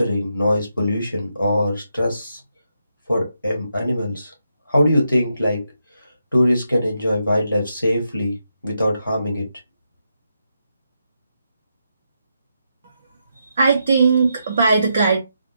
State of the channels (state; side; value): inverted; both; correlation -0.83